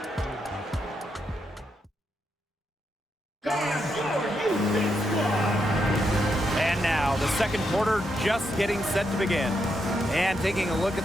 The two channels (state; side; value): normal; both; correlation 0.81